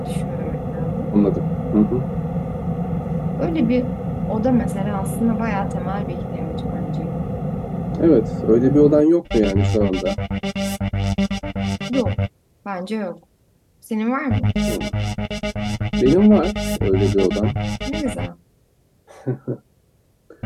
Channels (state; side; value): identical; both; correlation 1.00